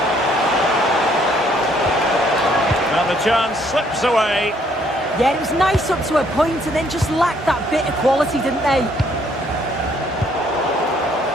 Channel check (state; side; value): normal; both; correlation 0.66